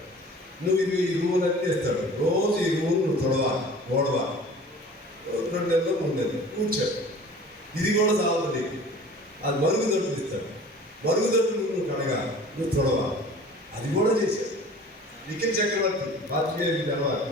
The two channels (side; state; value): both; normal; correlation 0.44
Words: నువ్వు ఇది ఈ రూల్ అన్నీ ఇస్తాడు. రోజు ఈ రూల్ నువ్వు తొడవాలి, ఓడవాలి, 2 నెలలు 3 నెలలు కూర్చోడు. ఇది కూడా చాలు నీకు. అది మరుగుదొడ్లు ఇస్తాడు, మరుగుదొడ్లు నువ్వు కడగాలి, నువ్వు తొడవాలి. అది కూడా చేశాడు. నిఖిల్ చక్రవర్తి పాత్రికేయుడికి తెలవాలి,